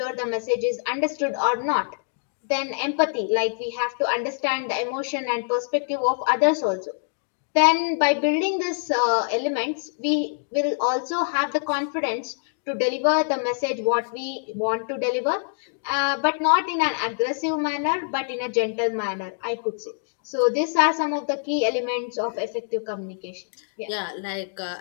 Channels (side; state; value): right; silent; digital silence